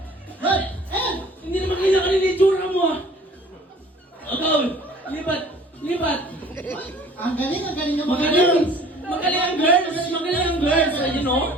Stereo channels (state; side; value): normal; both; correlation 0.51